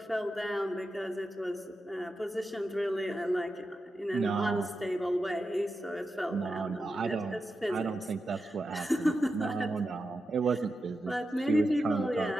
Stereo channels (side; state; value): both; normal; correlation 0.89